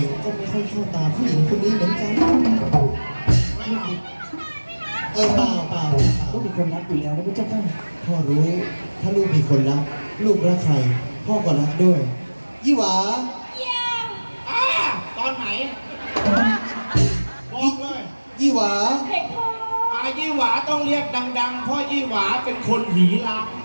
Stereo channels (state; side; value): inverted; both; correlation -1.00